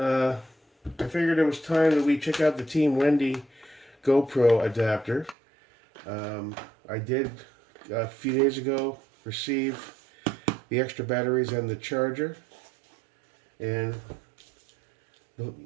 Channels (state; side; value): drops out; left; at 5.4 s